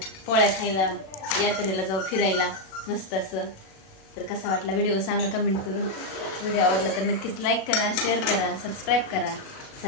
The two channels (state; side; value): late; right; 37 ms